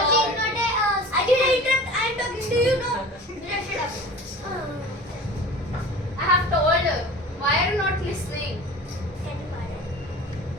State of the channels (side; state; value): both; normal; correlation 0.39